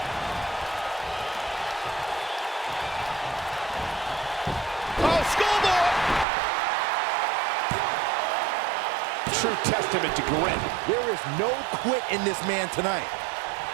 Oh, schoolboy! True testament to grit. There is no quit in this man tonight.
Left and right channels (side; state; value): left; drops out; at 6.2 s